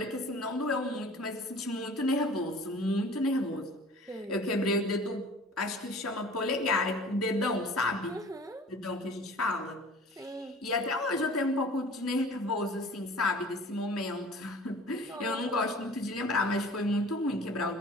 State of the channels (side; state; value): both; normal; correlation 0.45